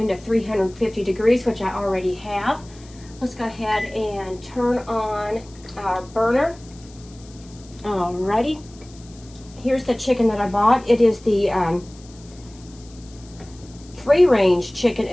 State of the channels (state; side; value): noise; left; hiss, 24 dB below the sound